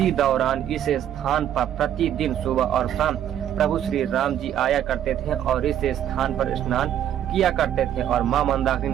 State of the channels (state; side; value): quieter; left; 10.6 dB